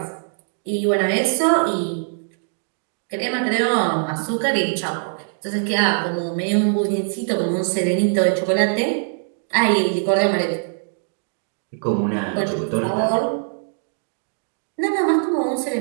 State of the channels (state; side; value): silent; left; digital silence